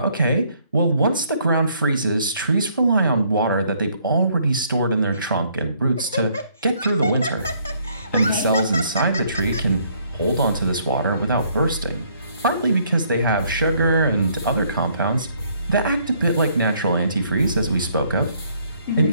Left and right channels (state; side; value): inverted; both; correlation -0.66